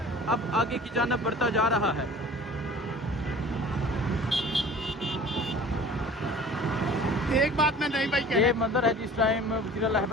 अब आगे की जानिब बढ़ता जा रहा है। एक बात मैं नहीं भाई ये मंजर है जिस टाइम वज़ीर आला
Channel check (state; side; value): normal; both; correlation 0.45